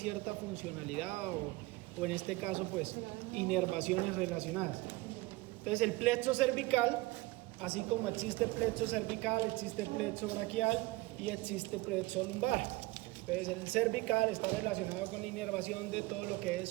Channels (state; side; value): quieter; left; 20.7 dB